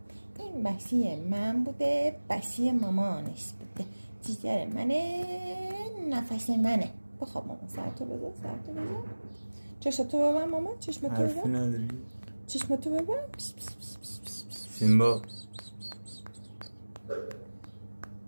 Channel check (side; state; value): both; inverted; correlation -1.00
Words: این بسی من بوده، بسی مامانش بوده. جیگر منه، نفس منه. بخواب مامان، سرتو بزن، سرتو بزن. چشمتو ببن مامان، چشمتو حرفی ببن، نداری؟ چشمتو ببن. سیمبا